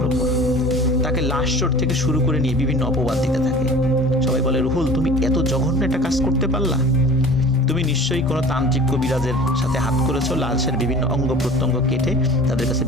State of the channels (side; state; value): both; normal; correlation 0.42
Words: উপর। তাকে লাশ চোট থেকে শুরু করে নিয়ে বিভিন্ন অপবাদ দিতে থাকে। সবাই বলে, রুহুল তুমি এত জঘন্য একটা কাজ করতে পারলা? তুমি নিশ্চয়ই কোনো তান্ত্রিক কবিরাজের সাথে হাত করেছো, লাশের বিভিন্ন অঙ্গ প্রত্যঙ্গ কেটে তাদের কাছে